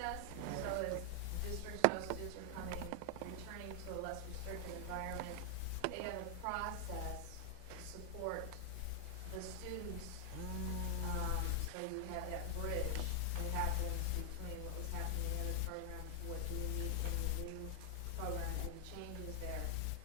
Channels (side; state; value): both; different; correlation 0.00